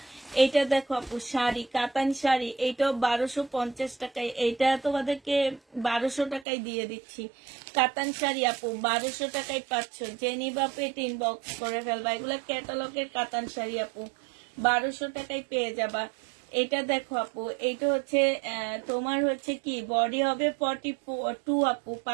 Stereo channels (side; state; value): left; drops out; at 6.5 s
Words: এইটা দেখো আপু শাড়ি, কাতান শাড়ি, এইটাও 1250 টাকায়। এইটা তোমাদেরকে 1200 টাকায় দিয়ে দিচ্ছি। কাতান শাড়ি আপু 1200 টাকায় পাচ্ছ। যে নিবা পেট ইনবক্স করে ফেলবা। এগুলো ক্যাটালগের কাতান শাড়ি আপু, 1200 টাকায় পেয়ে যাবা। এটা দেখো আপু, এইটা হচ্ছে তোমার হচ্ছে কি বডি হবে 42 আপু,